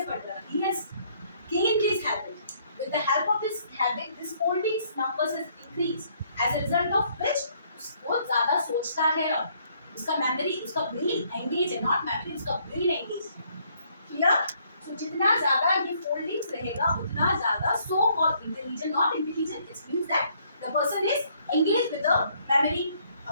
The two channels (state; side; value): inverted; both; correlation -0.66